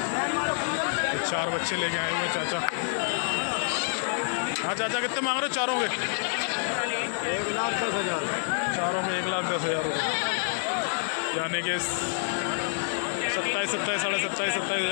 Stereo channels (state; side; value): silent; right; 59 dB below the other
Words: ये 4 बच्चे लेके आए हुए हैं चाचा। हाँ चाचा कितने मांग रहे हो चारों के? 1,10,000 चारों में 1,10,000 रुपये, यानी कि 27 साढ़े 27